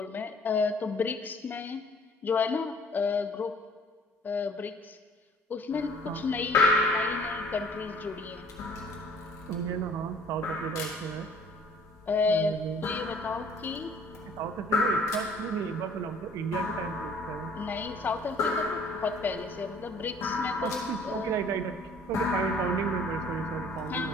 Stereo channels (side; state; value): both; normal; correlation 0.55